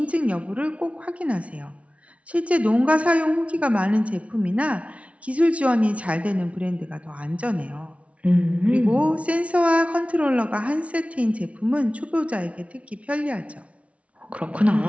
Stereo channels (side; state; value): left; late; 0.064 ms